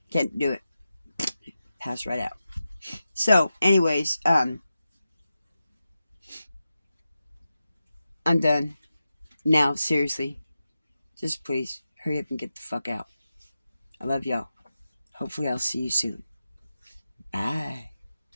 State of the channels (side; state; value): both; inverted; correlation -0.91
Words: Can't do it. Pass right out. So, anyways, I'm done. Now, seriously. Just please, hurry up and get the fuck out. I love y'all. Hopefully I'll see you soon. Bye.